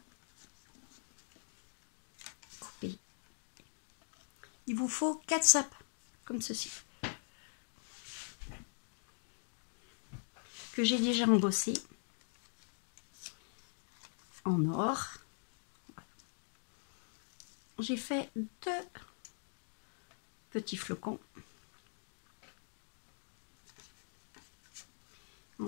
coupé. Il vous faut 4 sapins, comme ceci, que j'ai déjà embossé en or. J'ai fait 2 petits flocons.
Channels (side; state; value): right; silent; digital silence